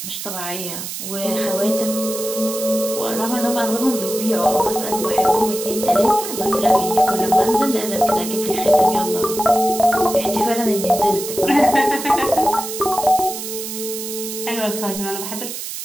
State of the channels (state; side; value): noise; right; hiss, 7 dB below the sound